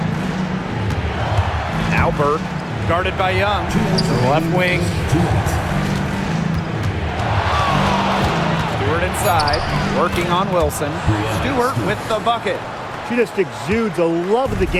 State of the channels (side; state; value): both; identical; correlation 1.00